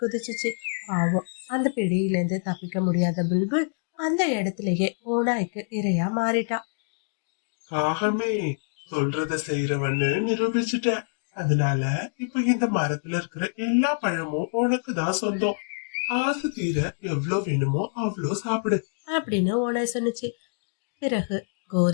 குதிச்சுச்சு. பாவம், அந்த பிடியில இருந்து தப்பிக்க முடியாத புல்புல் அந்த இடத்துலயே ஓநாய்க்கு இரையா மாறிட்டா. காகமே, சொல்றத செய்யறவன்னு நிரூபிச்சுட்ட. அதனால இப்ப இந்த மரத்துல இருக்கிற எல்லா பழமும் உனக்கு தான் சொந்தம். ஆசை தீர எவ்வளவு வேணுமோ அவ்வளோ சாப்பிடு அப்படின்னு ஓனாய் சொன்னுச்சு. பிறகு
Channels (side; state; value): right; silent; digital silence